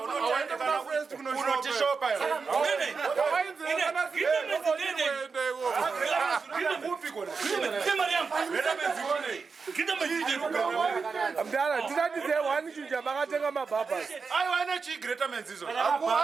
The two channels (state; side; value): quieter; left; 5.0 dB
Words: unotishopa mdara tinatize 1 chinja makatenga mabhabhas aiwa ine chigretamens izvo